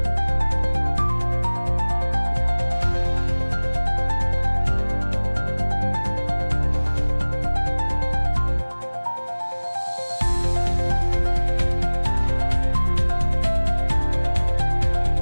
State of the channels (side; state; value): both; inverted; correlation -1.00